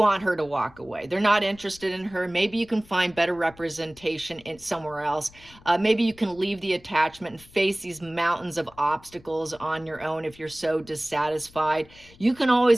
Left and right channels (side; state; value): left; noise; rumble, 24 dB below the sound